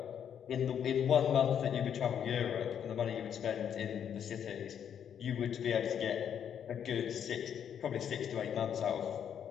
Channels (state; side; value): quieter; right; 8.6 dB